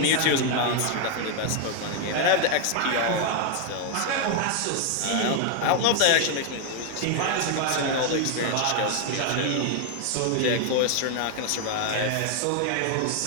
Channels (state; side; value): different; both; correlation 0.00